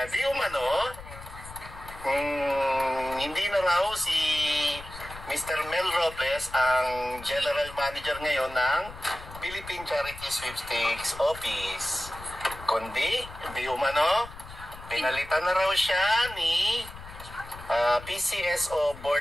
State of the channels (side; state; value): left; noise; rumble, 15 dB below the sound